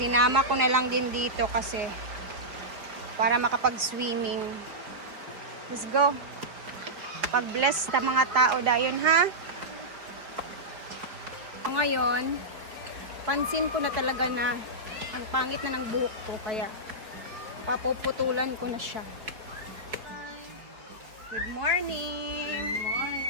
ko na lang din dito kasi para makapag-swimming. Let's go. Pag-bless sa mga tao dayon, ha? So, ngayon, pansin ko na talaga na ang pangit na ng buhok ko. Kaya papuputulan ko na siya. Good morning! Good morning!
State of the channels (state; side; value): late; left; 4.9 ms